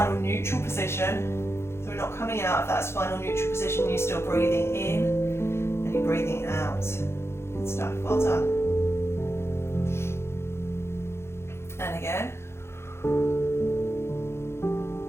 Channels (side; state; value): right; late; 0.12 ms